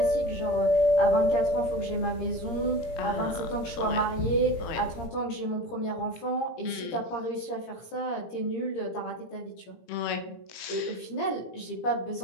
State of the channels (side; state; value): right; late; 17 ms